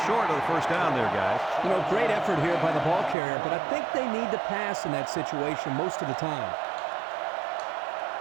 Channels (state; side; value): drops out; left; at 3.2 s